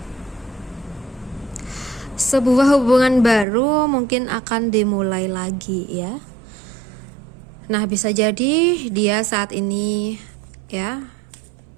Sebuah hubungan baru mungkin akan dimulai lagi ya. Nah, bisa jadi dia saat ini ya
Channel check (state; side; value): drops out; left; at 3.5 s